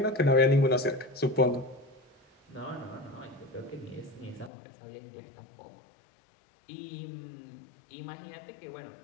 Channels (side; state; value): right; drops out; at 4.5 s